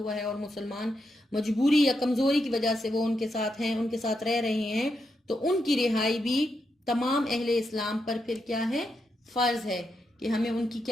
ہے اور مسلمان مجبوری یا کمزوری کی وجہ سے وہ ان کے ساتھ ہیں، ان کے ساتھ رہ رہے ہیں، تو ان کی رہائی بھی تمام اہل اسلام پر پھر کیا ہے، فرض ہے کہ ہمیں ان کی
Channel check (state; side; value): normal; both; correlation 0.83